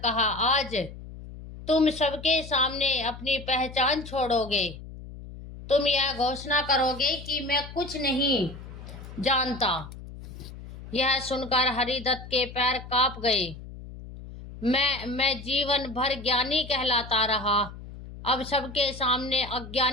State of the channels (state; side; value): noise; left; hum, 14 dB below the sound